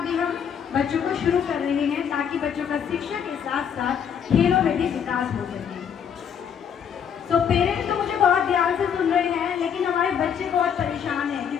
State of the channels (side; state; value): right; quieter; 7.9 dB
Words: भी हम बच्चों को शुरू कर रहे हैं, ताकि बच्चों का शिक्षा के साथ साथ खेलों में भी विकास हो सके। तो पेरेंट्स तो मुझे बहुत ध्यान से सुन रहे हैं, लेकिन हमारे बच्चे बहुत परेशान हैं